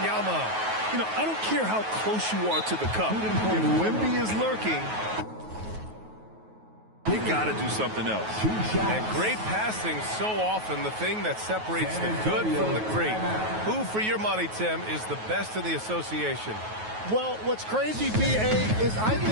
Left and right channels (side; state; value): left; late; 9.3 ms